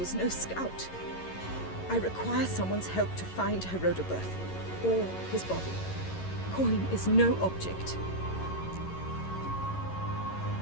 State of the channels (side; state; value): right; late; 11 ms